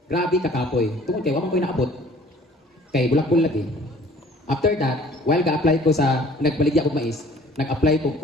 Grabe kakapoy. Tungkol kay, waman ko'y naabot. Kay, bulak-bulag eh. After that, while ga-apply ko sa nagbaligya og mais, nag-apply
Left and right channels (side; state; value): both; normal; correlation 0.52